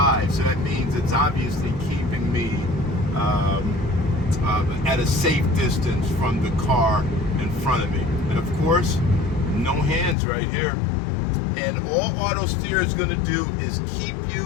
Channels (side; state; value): right; drops out; at 10.2 s